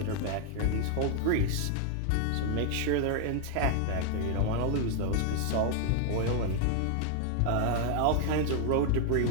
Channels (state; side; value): different; both; correlation 0.00